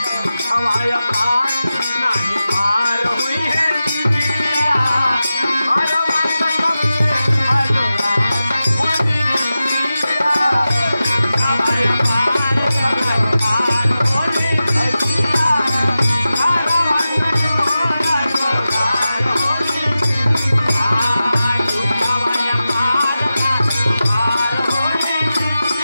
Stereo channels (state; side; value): inverted; both; correlation -0.93